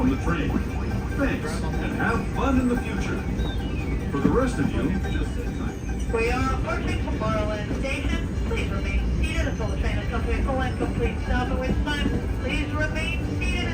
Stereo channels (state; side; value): identical; both; correlation 1.00